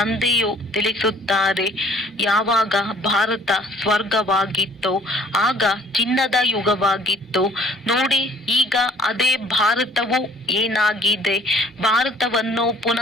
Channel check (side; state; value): both; normal; correlation 0.55